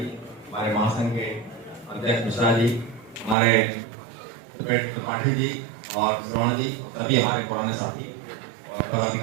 हमारे महासंघ के अध्यक्ष मिश्रा जी, हमारे त्रिपाठी जी और श्रवण जी, सभी हमारे पुराने साथी और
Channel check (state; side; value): drops out; left; at 3.4 s